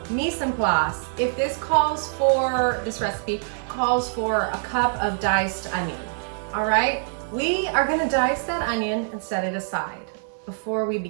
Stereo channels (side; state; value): left; silent; 62 dB below the other